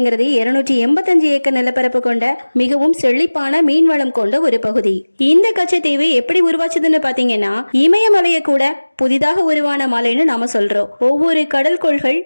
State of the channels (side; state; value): both; inverted; correlation -1.00